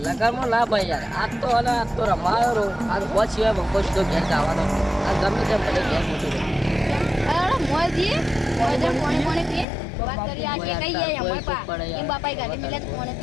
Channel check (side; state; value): right; drops out; at 9.7 s